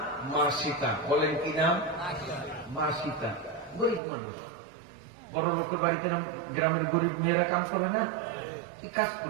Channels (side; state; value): left; drops out; at 4.0 s